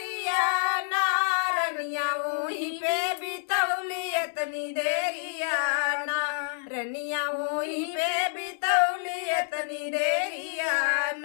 ना, रनिया ओही पे बितौली इतनी देरिया ना, रनिया वही पे बितौली इतनी देरिया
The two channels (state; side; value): silent; right; digital silence